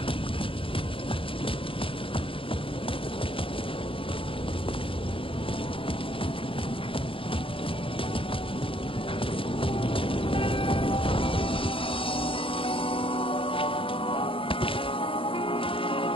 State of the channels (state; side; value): late; right; 0.26 ms